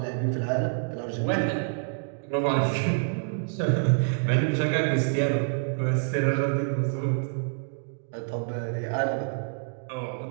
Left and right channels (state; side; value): silent; left; digital silence